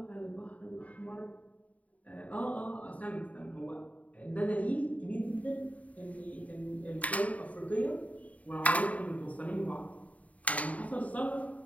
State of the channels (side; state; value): right; late; 0.069 ms